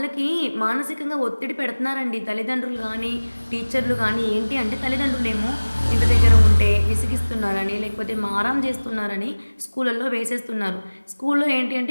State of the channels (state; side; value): inverted; both; correlation -1.00